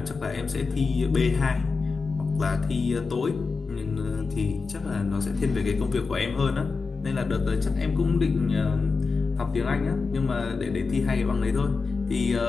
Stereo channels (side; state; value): right; quieter; 4.4 dB